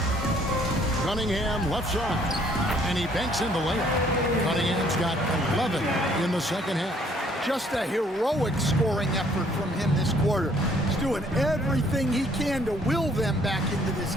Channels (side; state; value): both; normal; correlation 0.62